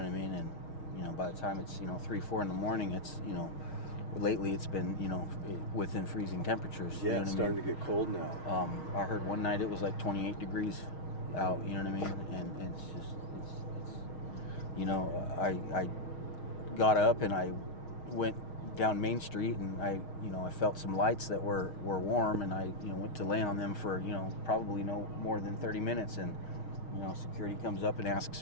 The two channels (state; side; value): late; right; 6.4 ms